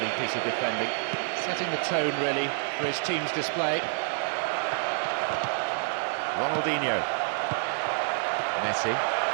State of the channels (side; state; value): left; silent; 59 dB below the other